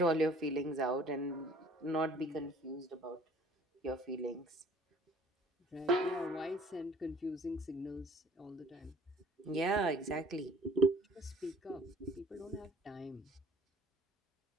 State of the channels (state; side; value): normal; both; correlation 0.54